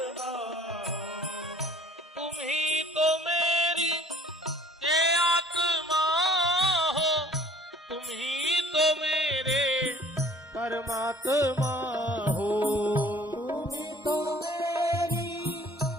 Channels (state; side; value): normal; both; correlation 0.54